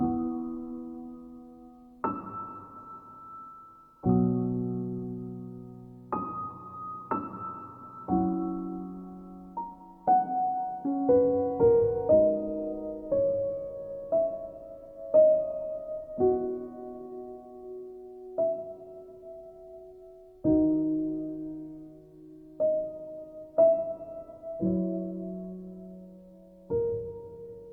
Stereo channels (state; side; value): identical; both; correlation 1.00